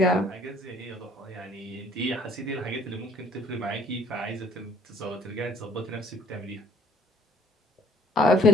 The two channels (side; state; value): both; normal; correlation 0.59